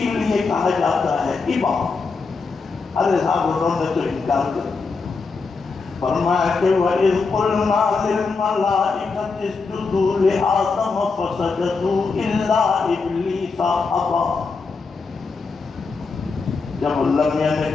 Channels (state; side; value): quieter; right; 4.5 dB